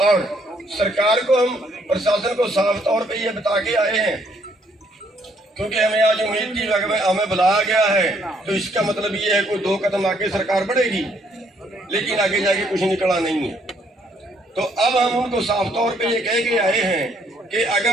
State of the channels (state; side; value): normal; both; correlation 0.68